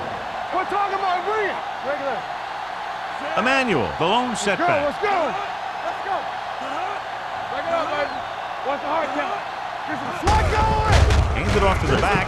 We're talking about bring it. Regular. Emmanuel, the lone Go. setback. Let's go. Let's go. Back it up, baby. Watch the hard count. Get some slot going. Hands it off to the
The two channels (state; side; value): identical; both; correlation 1.00